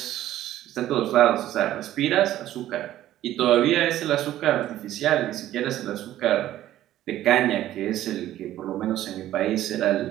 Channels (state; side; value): quieter; left; 13.4 dB